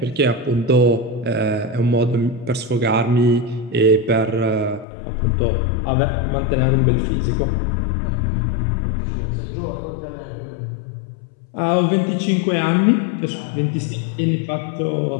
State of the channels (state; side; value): drops out; right; at 4.9 s